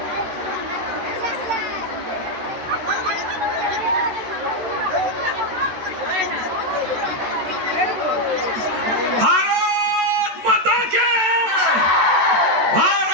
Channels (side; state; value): left; late; 14 ms